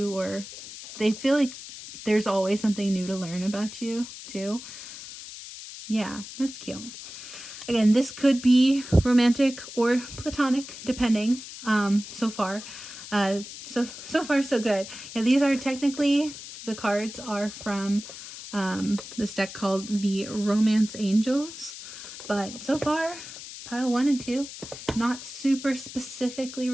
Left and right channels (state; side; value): noise; left; hiss, 12 dB below the sound